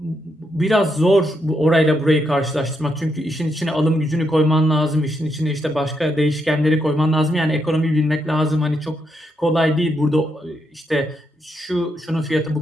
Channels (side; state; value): both; normal; correlation 0.80